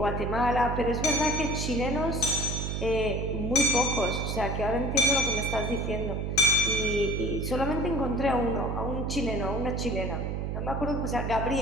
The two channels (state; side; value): noise; right; hum, 2 dB below the sound